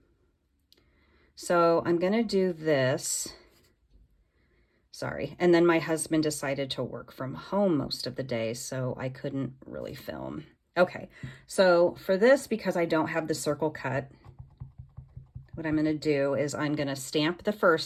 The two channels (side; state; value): both; identical; correlation 1.00